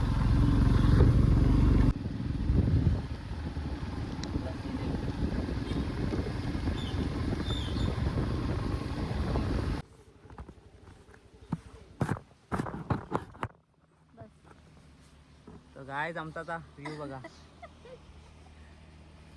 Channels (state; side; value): identical; both; correlation 1.00